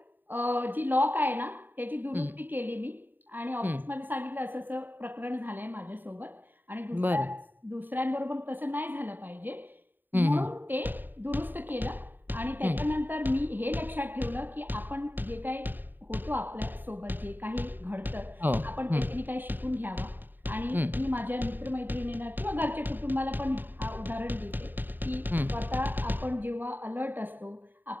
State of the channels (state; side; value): late; left; 0.091 ms